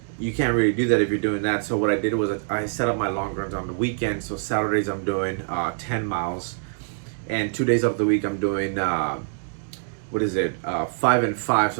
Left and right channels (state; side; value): silent; left; digital silence